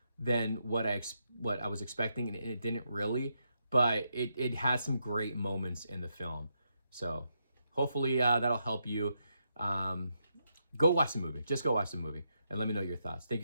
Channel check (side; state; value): both; inverted; correlation -0.81